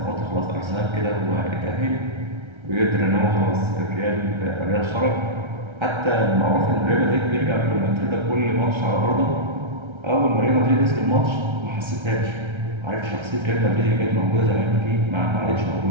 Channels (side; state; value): left; late; 1.3 ms